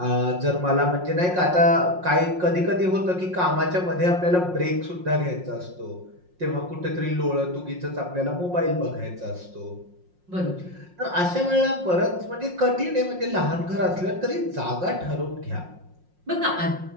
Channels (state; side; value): late; left; 5.6 ms